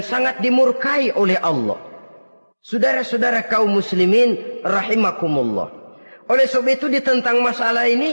sangat dimurkai oleh Allah. Saudara-saudara kaum muslimin rahimakumullah, oleh sebab itu tentang masalah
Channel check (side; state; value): both; inverted; correlation -1.00